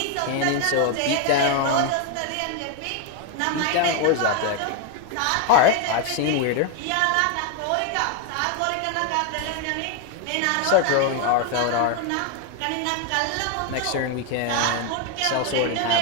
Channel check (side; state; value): both; different; correlation 0.01